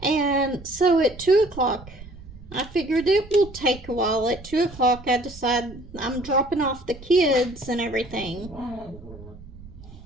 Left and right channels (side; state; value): right; noise; rumble, 17 dB below the sound